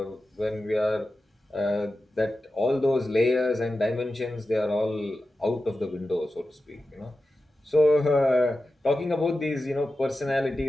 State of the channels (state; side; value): normal; both; correlation 0.93